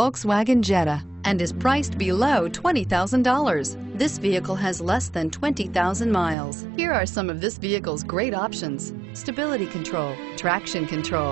Jetta, and is priced below $20,000. This vehicle has less than 20,000 miles. Here are some of this vehicle's great options: stability control, traction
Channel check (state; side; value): drops out; left; at 6.4 s